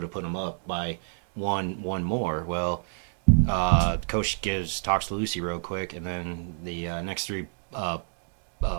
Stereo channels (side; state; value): left; silent; digital silence